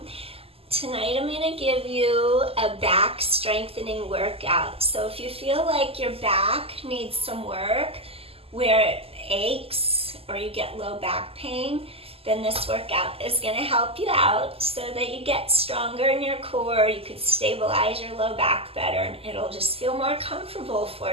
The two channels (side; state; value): left; late; 0.28 ms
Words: Tonight I'm going to give you a back strengthening workout. So if you feel like your back needs some work, where it aches or you get low back pain, then this workout is going to help you out so that you get stronger in your core, you can stabilize your low back better, and it'll just feel more comfortable for